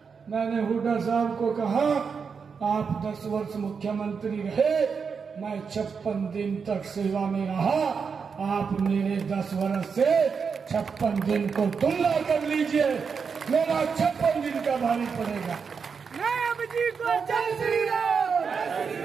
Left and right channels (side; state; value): left; quieter; 5.8 dB